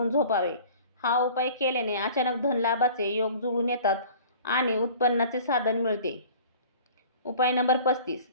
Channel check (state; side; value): inverted; both; correlation -0.46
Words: झोपावे. हा उपाय केल्याने अचानक धनलाभाचे योग जुळून येतात आणि उत्पन्नाचे साधन मिळते. उपाय नंबर 35.